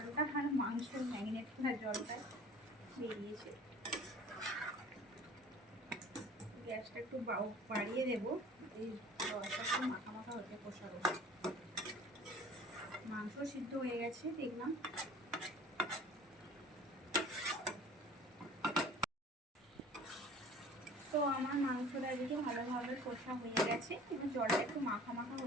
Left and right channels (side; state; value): both; normal; correlation 0.46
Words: আর মাংস ম্যারিনেট করা জলটা বেরিয়েছে। গ্যাসটা একটু বাড়িয়ে দেবো, এই জলটা একটু মাখা মাখা হতে কষা কষা। মাংস সিদ্ধ হয়ে গেছে দেখলাম। তো আমার মাংসটা এদিকে ভালোভাবে কষা হয়ে গেছে। এবার জলটা একটু মাখা মাখা